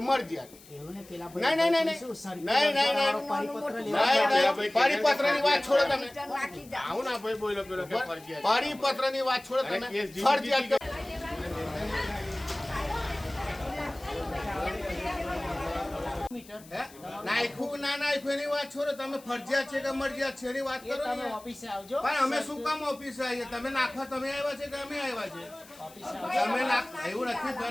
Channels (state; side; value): noise; left; hiss, 22 dB below the sound